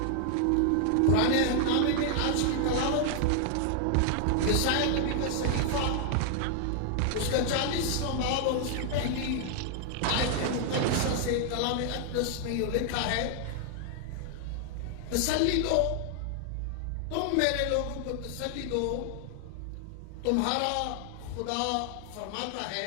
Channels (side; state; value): both; different; correlation 0.00